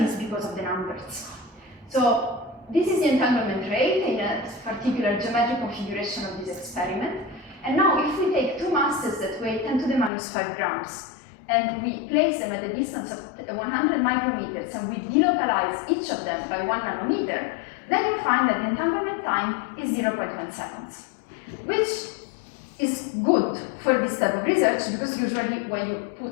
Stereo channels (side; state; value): right; drops out; at 10.1 s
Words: is because of the numbers. So, this is the entanglement rate in a particular geometric configuration of this experiment. And now, if we take two masses that weigh 10 to the minus 5 grams, and we place them at a distance of 100 micrometers, and we delocalize each of them by 1 nanometer, then you find that the entanglement time is 0.1 seconds, which is good for this type of research, because usually when you